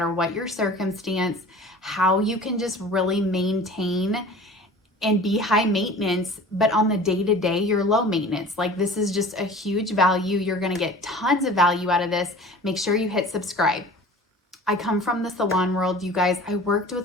what your circumstance, how you can just really maintain and be high maintenance, but on the day-to-day, you're low maintenance. Like, this is just a huge value. You're going to get tons of value out of this. Make sure you hit subscribe. I come from the salon world, you guys. I worked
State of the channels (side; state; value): both; normal; correlation 0.42